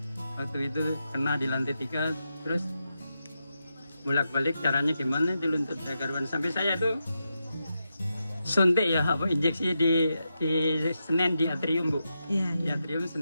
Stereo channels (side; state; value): both; inverted; correlation -0.87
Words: Waktu itu kena di lantai 3 terus bolak-balik, caranya gimana di lutut karuan sampai saya itu suntik ya, apa injeksi di Senen di atrium Bu. Iya, Di iya. atrium